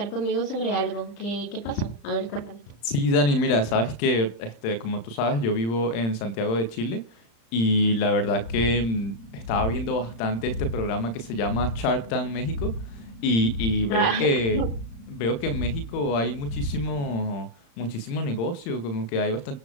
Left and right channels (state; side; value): late; right; 35 ms